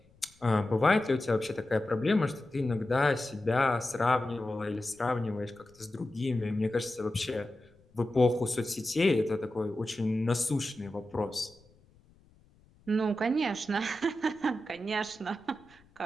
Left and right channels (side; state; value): left; noise; rumble, 30 dB below the sound